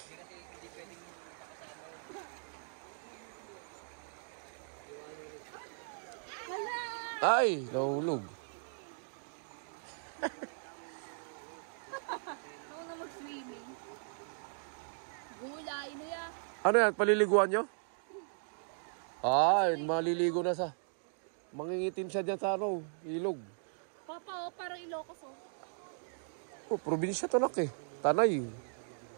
kasi hindi pwedeng makasama yun. Ay, nahulog. Ako na mag-swimming. Gulay na ya. Ano yan, paliliguan nyo? Ay, maliligo na sa... Mangingitim siya dyan sa ilog. Papa, oh, parang Ilocos, oh. Oh, probinsya to nak eh. Tanay.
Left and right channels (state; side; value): silent; left; digital silence